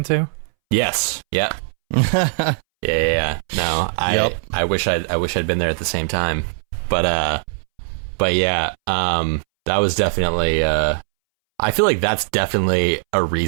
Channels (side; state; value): left; silent; 64 dB below the other